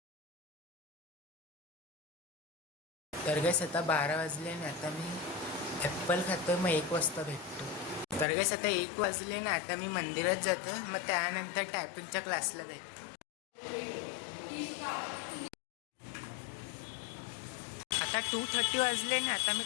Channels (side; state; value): right; drops out; at 8.2 s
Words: तर गाईस आता 12 वाजले आणि आता मी ॲप्पल खातो. मग 1 वाजता भेटतो. तर गाईस आता 1 वाजले ना आता मी मंदिरात जातो. मग त्यानंतर टायपिंगच्या क्लासला जातो. आता 2:30 वाजले ना आता मी